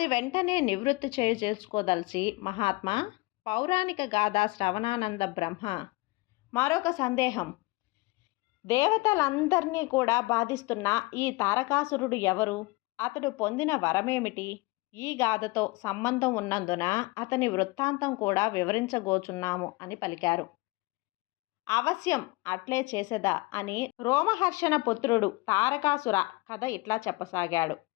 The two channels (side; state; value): right; quieter; 23.3 dB